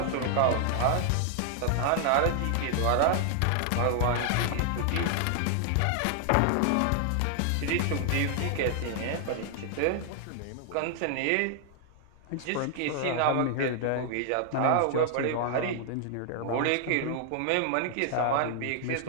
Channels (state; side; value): different; both; correlation 0.00